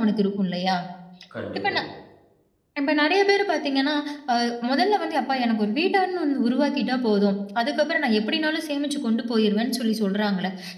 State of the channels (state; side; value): identical; both; correlation 1.00